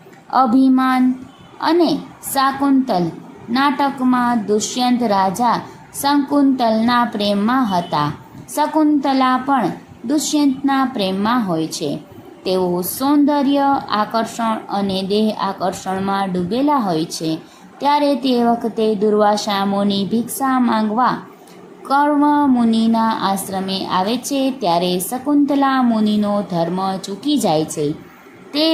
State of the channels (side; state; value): both; identical; correlation 1.00